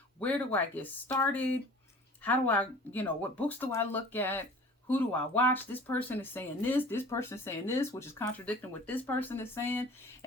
Where do I get started? How do I, what books do I look at? Who do I watch? This person is saying this person is saying this, which is contradicting what this person is saying.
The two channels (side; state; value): both; normal; correlation 0.44